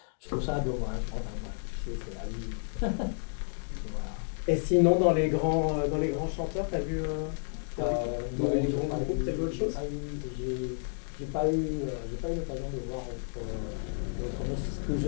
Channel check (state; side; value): silent; right; digital silence